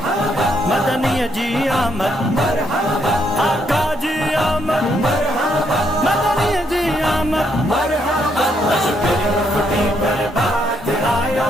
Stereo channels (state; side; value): normal; both; correlation 0.75